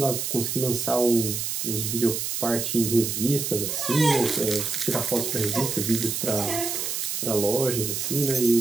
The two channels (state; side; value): noise; right; hiss, 2 dB below the sound